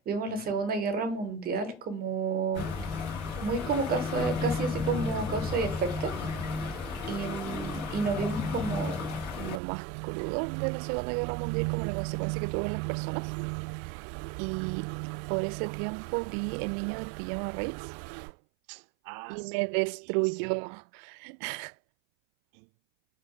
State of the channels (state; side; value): drops out; left; at 9.6 s